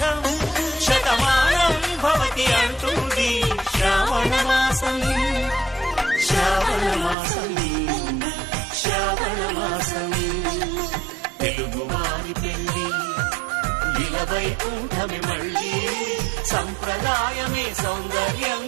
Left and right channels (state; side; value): drops out; left; at 7.2 s